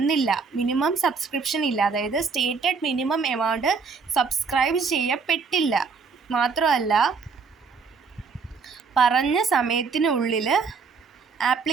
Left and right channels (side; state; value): left; quieter; 5.1 dB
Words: minimum subscription ഇല്ല, അതായത് stated minimum amount subscribe ചെയ്യപ്പെട്ടില്ല. മാത്രമല്ല പറഞ്ഞ സമയത്തിനുള്ളിൽ